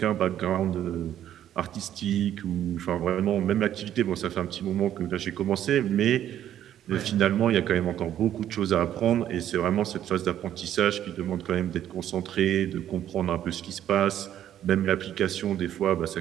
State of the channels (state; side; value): quieter; left; 11.1 dB